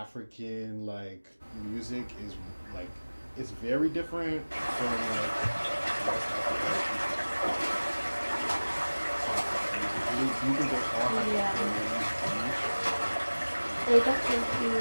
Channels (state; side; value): inverted; both; correlation -1.00